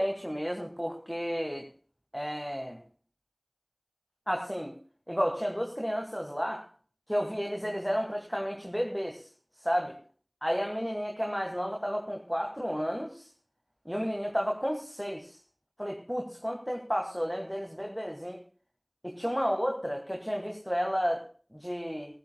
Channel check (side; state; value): both; identical; correlation 1.00